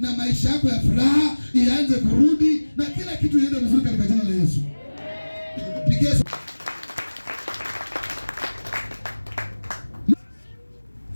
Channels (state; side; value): inverted; both; correlation -1.00